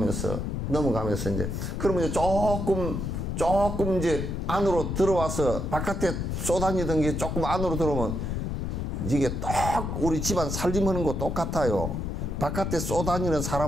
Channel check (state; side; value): noise; left; rumble, 2 dB below the sound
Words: 이제 그러면 이제 조금 이제 안으로 들어와서 바깥에 쏘다니던 게 조금 안으로 들어오면 이게 딱 우리 집안 살림하는 거 똑같아요. 바깥에 쏘다니는